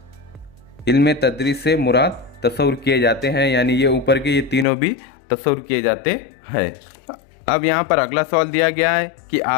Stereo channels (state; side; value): drops out; right; at 4.7 s